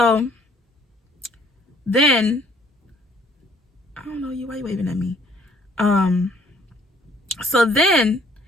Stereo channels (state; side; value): normal; both; correlation 0.60